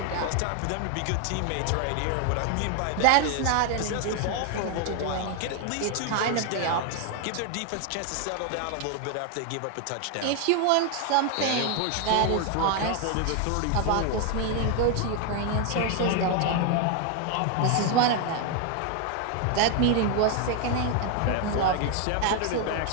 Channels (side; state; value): both; different; correlation 0.01